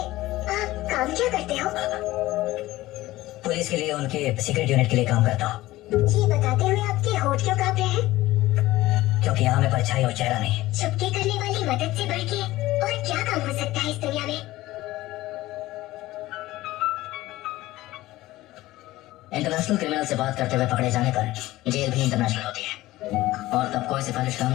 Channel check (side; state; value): right; quieter; 17.2 dB